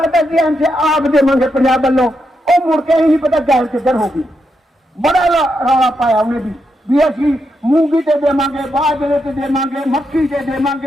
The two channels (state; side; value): normal; both; correlation 0.83